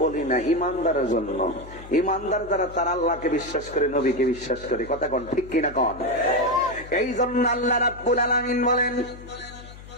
বলি না, ইমানদারের জন্য। ইমানদার যারা তারা আল্লাহকে বিশ্বাস করে, নবীকে বিশ্বাস করে। কথা কোন ঠিক কিনা কোন? এই জন্য আল্লাহ রাব্বুল আলামিন বলেন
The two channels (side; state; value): left; noise; hum, 17 dB below the sound